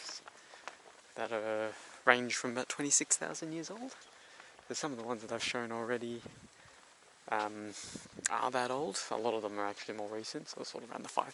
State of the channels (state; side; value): identical; both; correlation 1.00